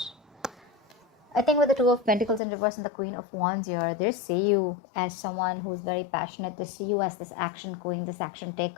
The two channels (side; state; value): right; drops out; at 2.4 s